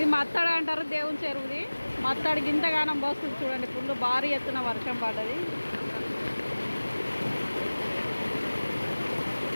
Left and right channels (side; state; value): both; inverted; correlation -1.00